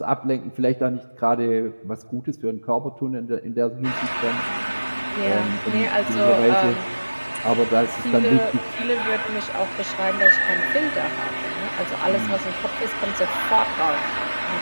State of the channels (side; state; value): both; inverted; correlation -1.00